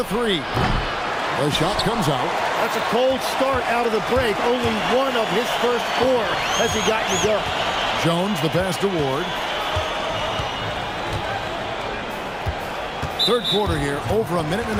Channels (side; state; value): both; identical; correlation 1.00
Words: three. The shot comes out. That's a cold start out of the break. Only one of his first 4 has he gotten to go. Jones, the pass to Ward. Third quarter here, over a minute and